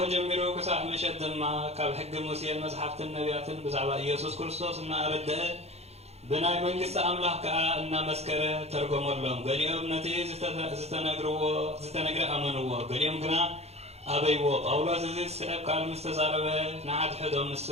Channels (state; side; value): late; left; 0.31 ms